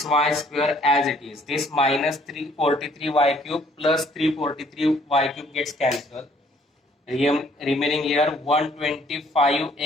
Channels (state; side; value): normal; both; correlation 0.62